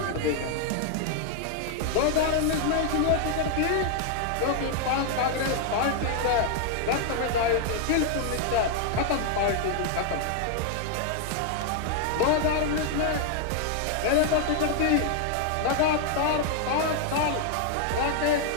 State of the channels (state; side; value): different; both; correlation 0.00